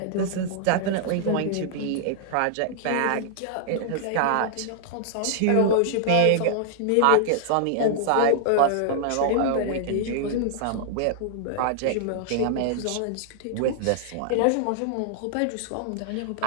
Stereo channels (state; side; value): different; both; correlation -0.01